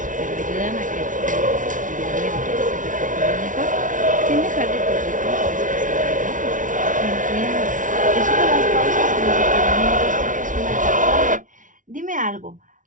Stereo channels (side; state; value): left; late; 0.38 ms